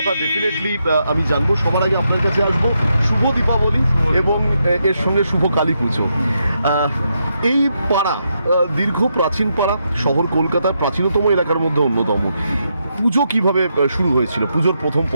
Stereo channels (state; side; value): inverted; both; correlation -0.81